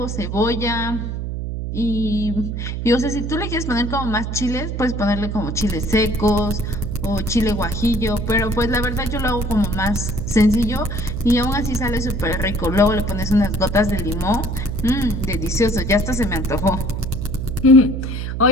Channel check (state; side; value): noise; right; hum, 4 dB below the sound